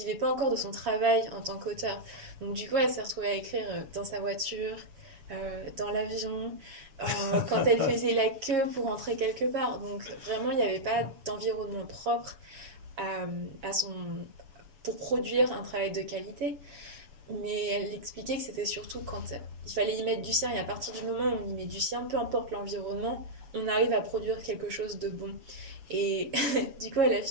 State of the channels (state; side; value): late; left; 7.4 ms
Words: pas encore de son travail en tant qu'auteur. Donc du coup, elle s'est retrouvée à écrire dans sa voiture, dans l'avion, quand elle faisait la queue pour rentrer quelque part. Donc vraiment, il n'y avait pas d'environnement propre pour produire un travail de qualité. Mais elle expliquait que c'était surtout quand il fallait y mettre du sien. Et à partir du moment où on y met du sien, peu importe l'environnement, on arrive à produire quelque chose de bon. Et du coup, elle a